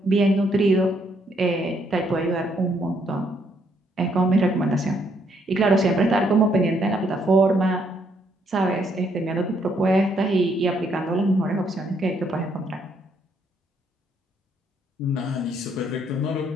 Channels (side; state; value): both; normal; correlation 0.71